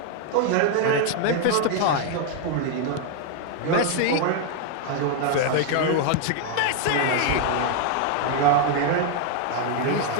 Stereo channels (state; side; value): different; both; correlation 0.00